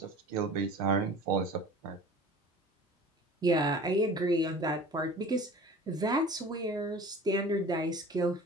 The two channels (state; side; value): normal; both; correlation 0.42